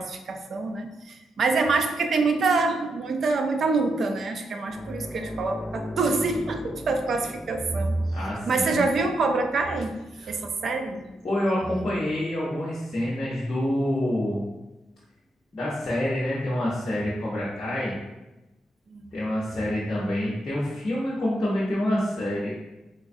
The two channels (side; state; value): both; normal; correlation 0.83